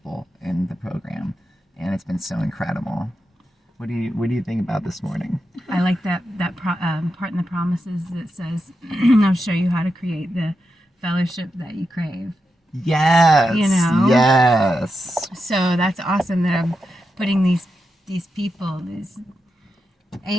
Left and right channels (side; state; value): both; normal; correlation 0.88